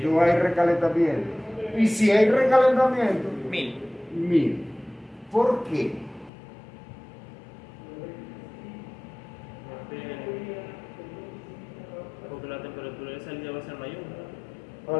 hay recalentamiento. Y si hay recalentamiento, 1000. 1000. ¿Por qué? Porque la temperatura de salida va a ser mayor.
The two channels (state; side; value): drops out; right; at 6.3 s